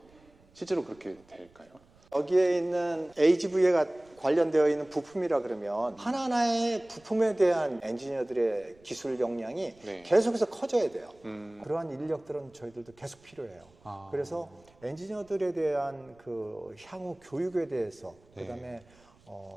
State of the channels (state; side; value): noise; right; rumble, 29 dB below the sound